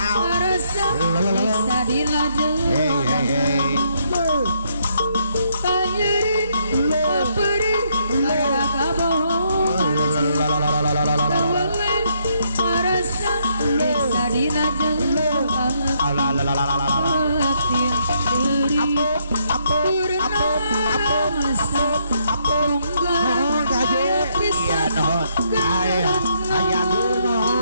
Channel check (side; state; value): both; inverted; correlation -0.73